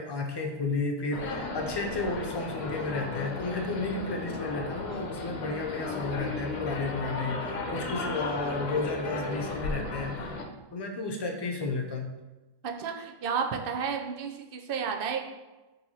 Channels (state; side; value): late; right; 1.1 ms